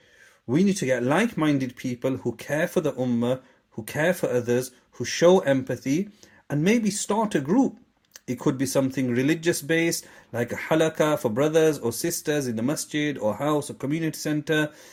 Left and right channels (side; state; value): both; identical; correlation 1.00